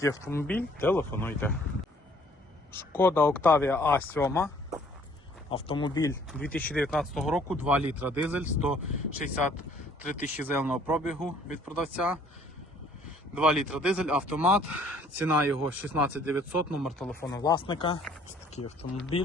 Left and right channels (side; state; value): both; normal; correlation 0.59